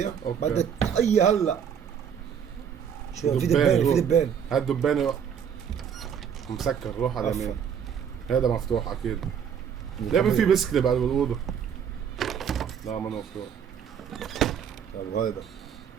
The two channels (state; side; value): quieter; left; 7.8 dB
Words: أوكي. بدك الطاقية هلا. شو في دبان هاد دبانة مسكر روح على اليمين. هذا مفتوح اكيد. ليه في بسكلي بعد بالأوضة؟ لا ما مفتوح. طيب هذا.